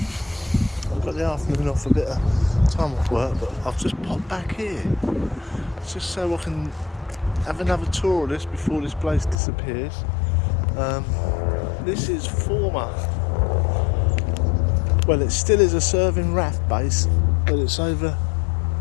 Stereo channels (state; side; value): drops out; right; at 9.3 s